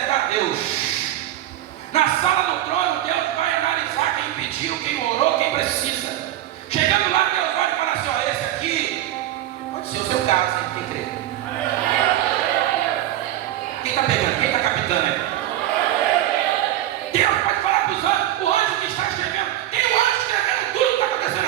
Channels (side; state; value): left; quieter; 13.4 dB